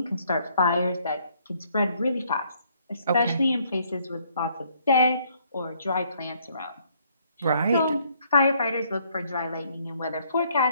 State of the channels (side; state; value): both; inverted; correlation -0.66